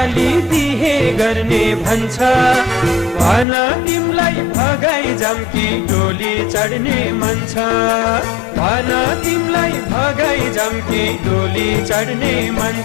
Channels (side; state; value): right; drops out; at 3.5 s